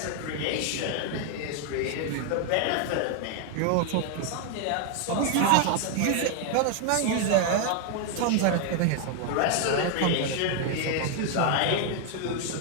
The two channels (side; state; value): both; different; correlation 0.00